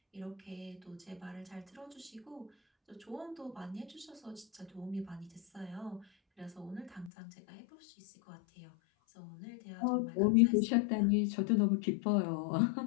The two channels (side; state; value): right; drops out; at 7.1 s